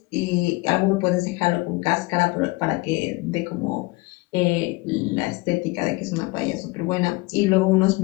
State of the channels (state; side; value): quieter; right; 23.2 dB